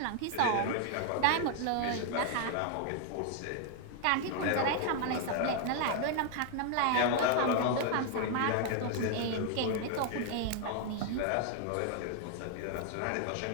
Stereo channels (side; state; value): both; different; correlation 0.00